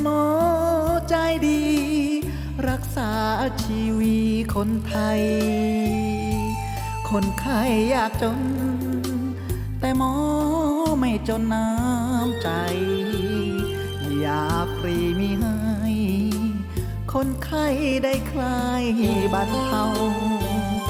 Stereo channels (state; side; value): identical; both; correlation 1.00